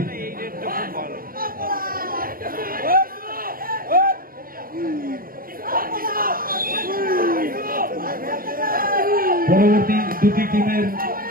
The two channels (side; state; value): left; late; 0.42 ms